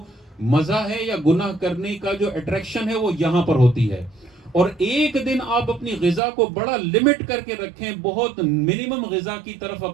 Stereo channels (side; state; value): left; drops out; at 6.2 s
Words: مزہ ہے یا گناہ کرنے کا جو اٹریکشن ہے وہ یہاں پر ہوتی ہے. اور ایک دن آپ اپنی غذا کو بڑا لمٹ کر کے رکھیں، بہت منیمم غذا کی طرف